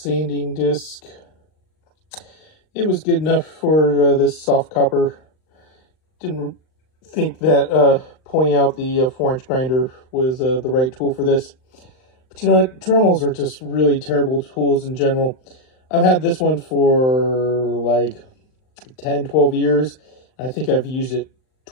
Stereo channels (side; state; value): right; late; 39 ms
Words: disc. It was good enough for this soft copper. didn't think that pulling out the 4-inch grinder was the right tool for this. But you know what? Dremels are just really terrible tools in general. I've had this one for like 10, 12 years. I think I've used it